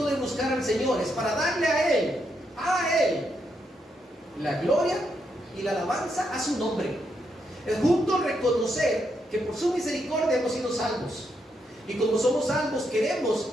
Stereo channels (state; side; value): normal; both; correlation 0.80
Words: de buscar al Señor es para darle a Él, la gloria y la alabanza a su nombre. Es justo reconocer que por su misericordia hemos sido salvos. Y como somos salvos, queremos